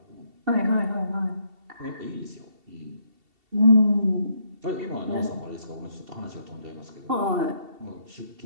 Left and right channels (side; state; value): left; late; 2.7 ms